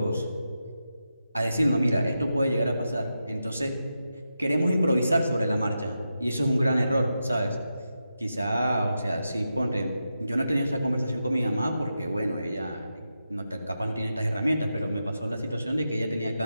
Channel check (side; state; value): both; inverted; correlation -0.88